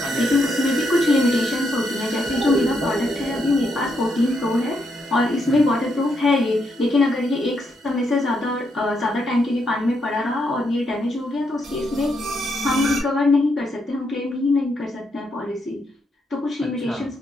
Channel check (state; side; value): normal; both; correlation 0.79